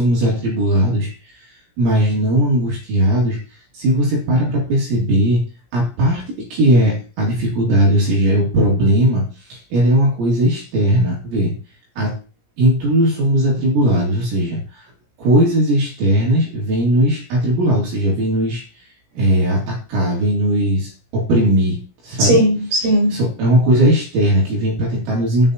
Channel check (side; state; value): left; late; 17 ms